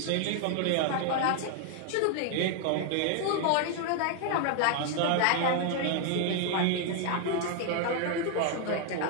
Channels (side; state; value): both; different; correlation 0.00